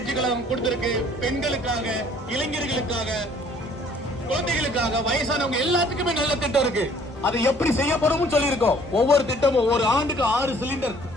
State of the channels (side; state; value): both; normal; correlation 0.57